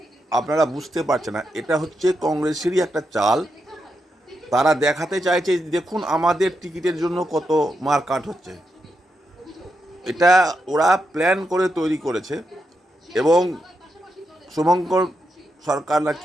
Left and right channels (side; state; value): both; normal; correlation 0.84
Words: আপনারা বুঝতে পারছেন না, এটা হচ্ছে কংগ্রেসেরই একটা চাল। তারা দেখাতে চাইছে দেখুন আমাদের টিকিটের জন্য কত মারকাট হচ্ছে। এটা ওরা প্ল্যান করে তৈরি করেছে এবং শুভঙ্কর সরকার না